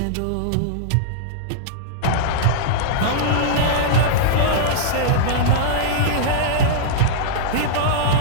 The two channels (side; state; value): both; different; correlation -0.02